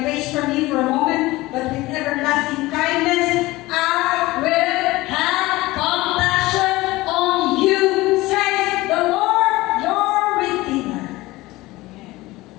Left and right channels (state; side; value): quieter; right; 19.5 dB